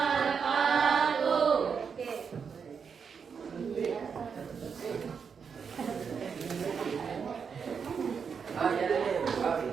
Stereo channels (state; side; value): quieter; left; 6.3 dB